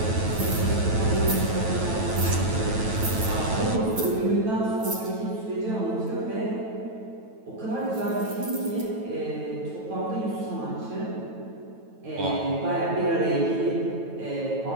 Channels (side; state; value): left; late; 9.2 ms